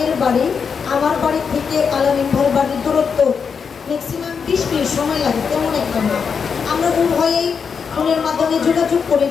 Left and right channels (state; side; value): quieter; right; 6.1 dB